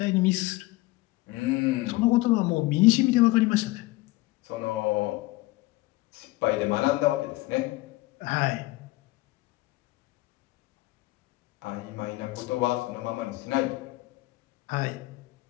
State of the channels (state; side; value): quieter; right; 19.8 dB